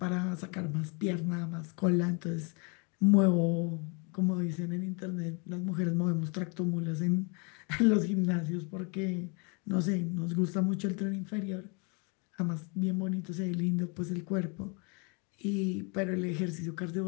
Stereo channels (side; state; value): right; quieter; 33.6 dB